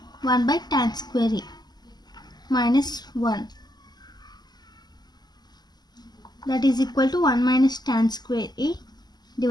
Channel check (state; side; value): late; right; 0.20 ms